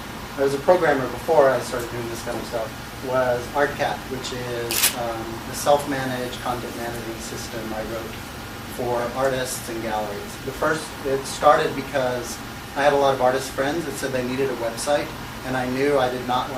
I was a programmer before I started doing this kind of stuff, was ArtCal, which is a self-managed content management system I wrote for artists and galleries. It started because I had a lot of artist friends that said they needed a website, and I knew I did not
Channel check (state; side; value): identical; both; correlation 1.00